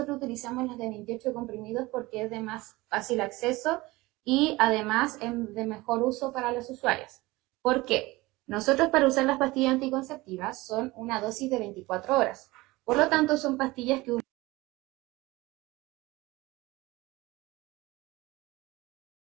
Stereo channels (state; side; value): quieter; left; 20.9 dB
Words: utilizamos las de 28 comprimidos porque es de más fácil acceso y además es de mejor uso para los usuarios. ¿Por qué? Nosotros para usar las pastillas anticonceptivas son una dosis de 24 horas. Por lo tanto, son pastillas que